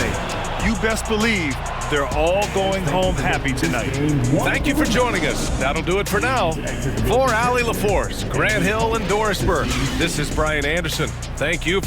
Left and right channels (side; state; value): both; identical; correlation 1.00